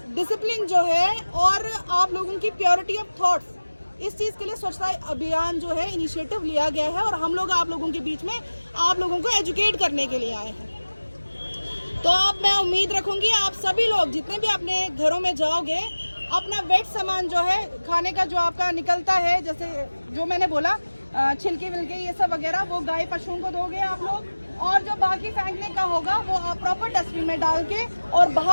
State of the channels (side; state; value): both; inverted; correlation -1.00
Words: डिसिप्लिन जो है, और आप लोगों की प्योरिटी ऑफ थॉट्स, इस चीज़ के लिए स्वच्छता अभियान जो है इनिशिएटिव लिया गया है और हम लोग आप लोगों के बीच में आप लोगों को एजुकेट करने के लिए आए हैं। तो अब मैं उम्मीद रखूंगी सभी लोग जितने भी अपने घरों में जाओगे, अपना वेट सामान जो है खाने का जो आपका निकलता है, जैसे जो मैंने बोला छिलके विलके ये सब वगैरह, वो गाय पशुओं को दोगे आप लोग। और जो बाकी फेंकने का होगा वो आप प्रॉपर डस्टबिन में डाल के, और